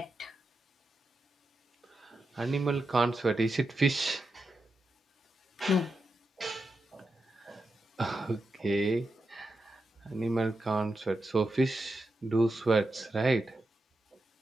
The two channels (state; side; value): normal; both; correlation 0.88